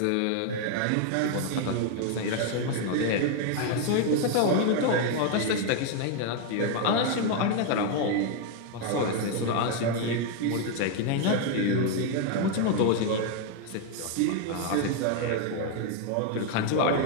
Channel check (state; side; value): different; both; correlation 0.00